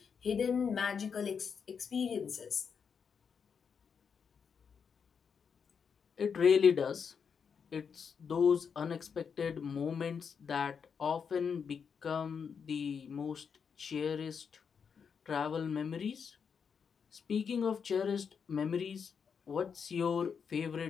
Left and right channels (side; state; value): right; quieter; 6.5 dB